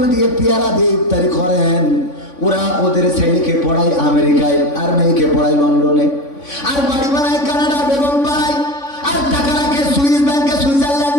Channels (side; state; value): right; late; 3.5 ms